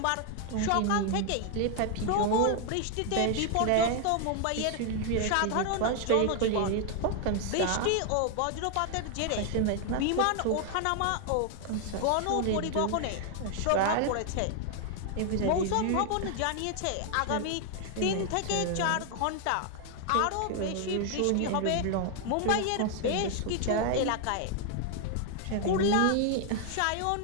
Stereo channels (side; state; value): both; different; correlation 0.00